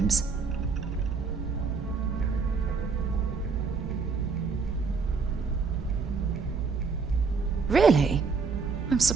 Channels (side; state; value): left; quieter; 5.0 dB